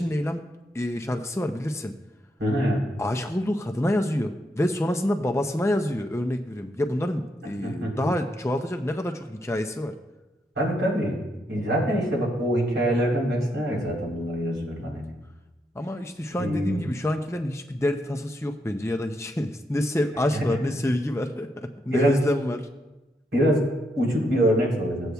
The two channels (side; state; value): both; normal; correlation 0.79